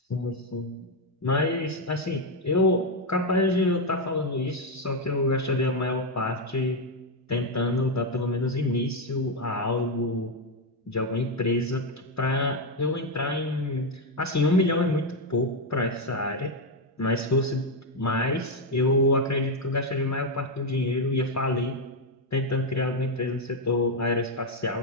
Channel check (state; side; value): normal; both; correlation 0.05